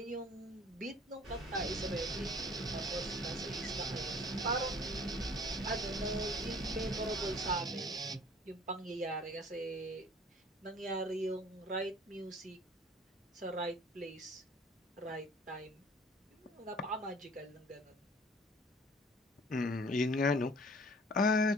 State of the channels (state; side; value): normal; both; correlation 0.51